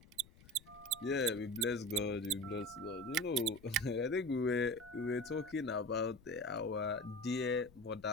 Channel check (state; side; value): noise; left; rumble, 24 dB below the sound